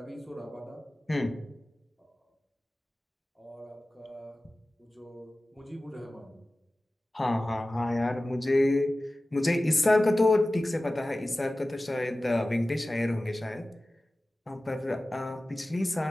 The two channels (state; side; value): normal; both; correlation 0.96